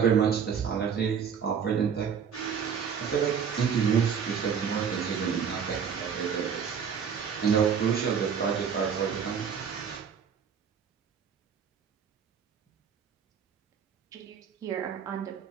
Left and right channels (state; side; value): quieter; left; 7.1 dB